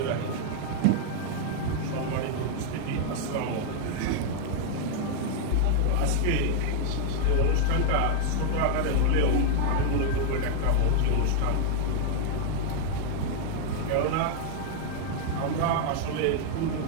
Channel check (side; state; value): both; different; correlation 0.00